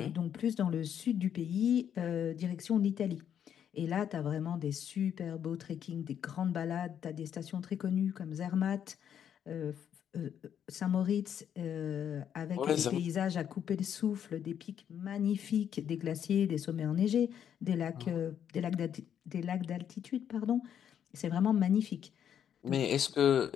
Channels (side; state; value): right; quieter; 9.0 dB